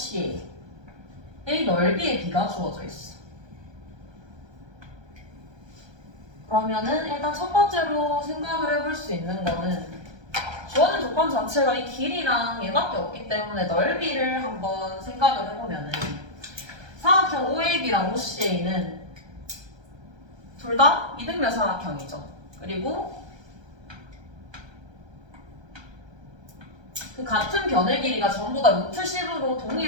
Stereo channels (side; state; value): left; late; 1.3 ms